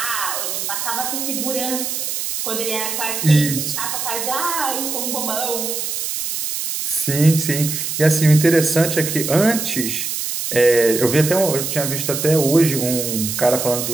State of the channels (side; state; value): right; noise; hiss, 3 dB below the sound